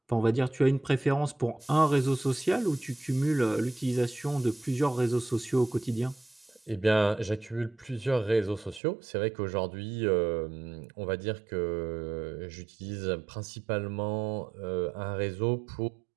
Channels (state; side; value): drops out; left; at 8.8 s